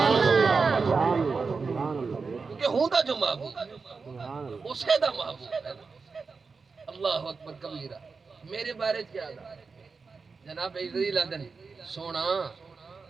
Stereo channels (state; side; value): quieter; left; 4.7 dB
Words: کیونکہ ہوں دا جو محبوب اسے دا محبوب ہے اللہ اکبر کبیرہ میرے بارے کیا دا جناب عزیز لدن سونا